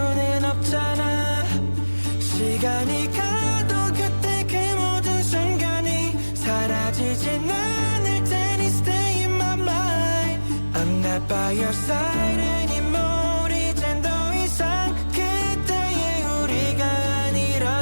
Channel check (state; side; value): inverted; both; correlation -1.00